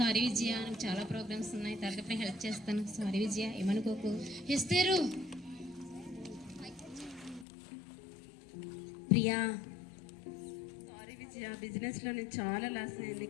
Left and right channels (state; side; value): drops out; right; at 7.5 s